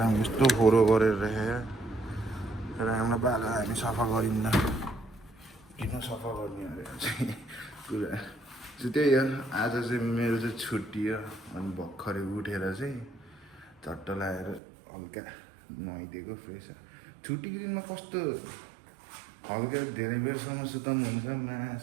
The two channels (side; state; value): left; drops out; at 14.6 s